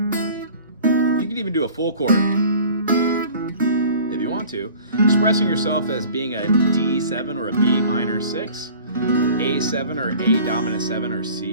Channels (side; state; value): both; inverted; correlation -0.45